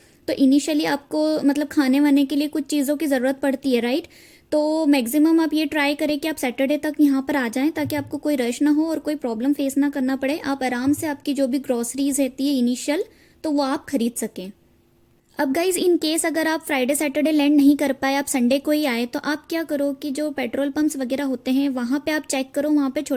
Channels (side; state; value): both; identical; correlation 1.00